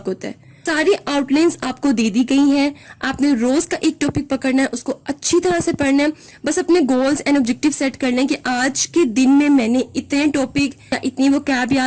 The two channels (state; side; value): identical; both; correlation 1.00